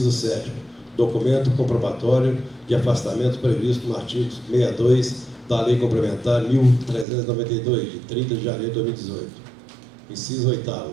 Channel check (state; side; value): drops out; left; at 7.1 s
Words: 7º. Documento comprobatório de afastamento previsto no artigo 62 da Lei Complementar 1392, de 30 de janeiro de 2018. Inciso 8º.